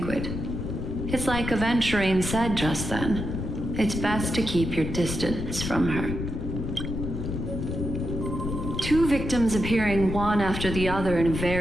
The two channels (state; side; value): noise; left; rumble, 4 dB below the sound